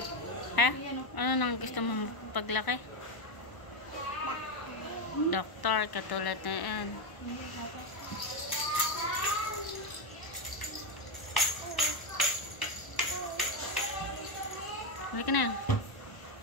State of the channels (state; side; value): late; right; 1.0 ms